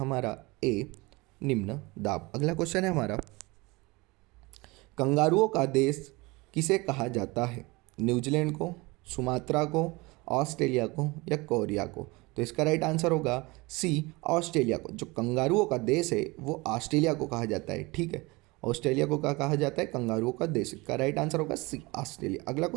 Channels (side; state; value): left; quieter; 23.9 dB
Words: ए, निम्न दाब। अगला क्वेश्चन है हमारा, कंगारुओं का देश किसे कहा जाता है? न्यूजीलैंड को, सुमात्रा को, ऑस्ट्रेलिया को या कोरिया को? तो इसका राइट आंसर होगा सी, ऑस्ट्रेलिया को। जो कंगारुओं का देश है वो ऑस्ट्रेलिया को कहा जाता है। ठीक है, ऑस्ट्रेलिया को क्या कहा जाता है? कंगारुओं का देश। का राइट आंसर होगा सी, ऑस्ट्रेलिया। अगला